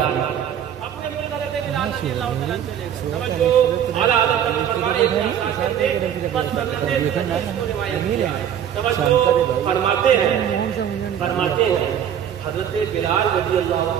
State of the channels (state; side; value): quieter; left; 9.4 dB